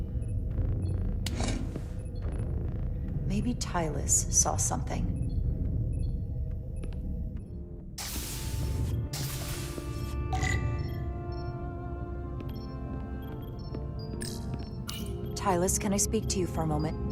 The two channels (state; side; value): identical; both; correlation 1.00